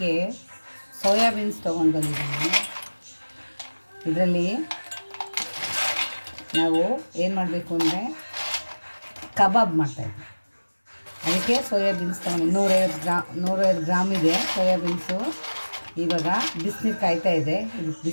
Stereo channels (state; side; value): inverted; both; correlation -1.00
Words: ಸೋಯಾಬೀನ್ಸ್ ತೊಗೊಂಡು ಬಂದಿದ್ದೀನಿ. ಇದರಲ್ಲಿ ನಾವು ಏನು ಮಾಡಬೇಕು ಅಂದರೆ ಕಬಾಬ್ ಮಾಡ್ತಾಯಿದ್ವಿ. ಅದಕ್ಕೆ ಸೋಯಾಬೀನ್ಸ್ ತೊಗೊಂಡು 150 ಗ್ರಾಮ್ ಇದೆ ಸೋಯಾಬೀನ್ಸು. ಇವಾಗ ಬಿಸಿನೀರು ಕಾಯ್ತಾ ಇದೆ, ಇದಕ್ಕೆ